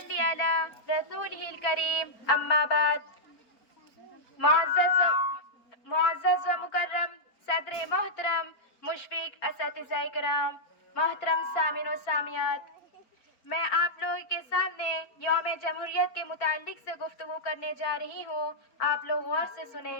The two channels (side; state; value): right; late; 4.3 ms